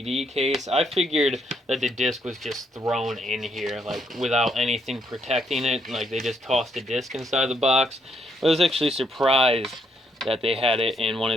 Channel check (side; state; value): both; normal; correlation 0.74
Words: case. I figured that the disc was just thrown in here, like without anything protecting it. Like they just tossed a disc inside the box. But I was actually surprised that they had it in one of